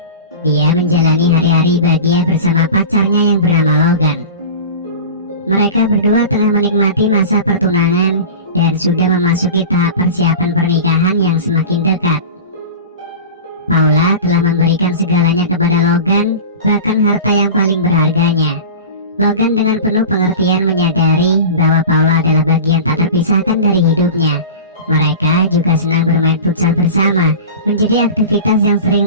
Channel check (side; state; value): both; inverted; correlation -0.33